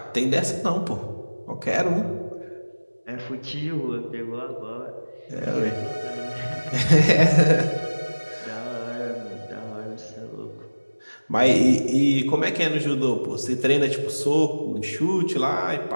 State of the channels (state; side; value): inverted; both; correlation -1.00